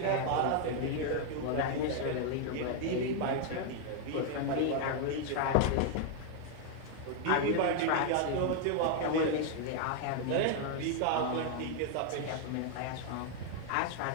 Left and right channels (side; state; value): both; different; correlation 0.00